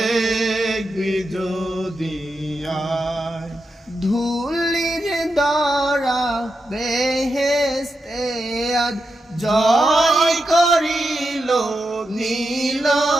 যদি আয় ধুলির দ্বারা বেহেশতে আজ জয় করিল নীল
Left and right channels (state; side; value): normal; both; correlation 0.87